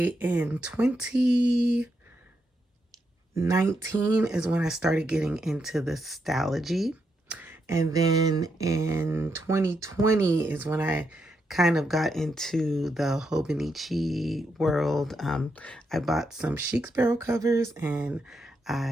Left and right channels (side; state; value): both; normal; correlation 0.81